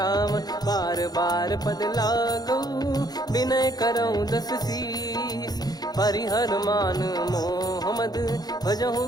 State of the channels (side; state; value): right; late; 0.19 ms